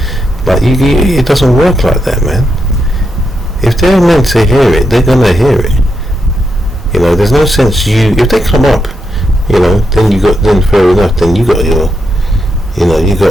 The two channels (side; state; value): both; normal; correlation 0.83